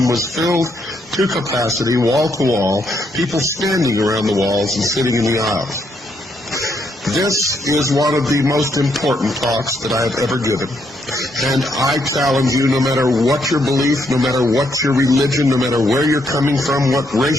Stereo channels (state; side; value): normal; both; correlation 0.75